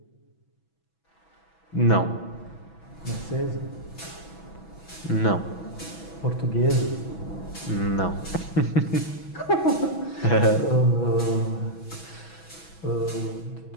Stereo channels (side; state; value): right; late; 6.1 ms